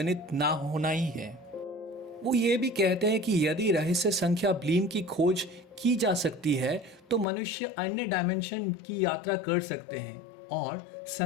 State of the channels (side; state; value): right; drops out; at 7.2 s